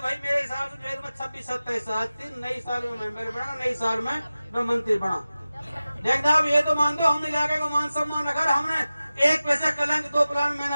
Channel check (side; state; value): both; inverted; correlation -0.96